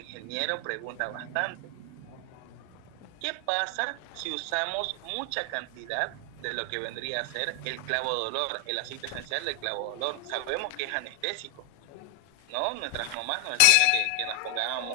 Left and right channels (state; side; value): different; both; correlation 0.00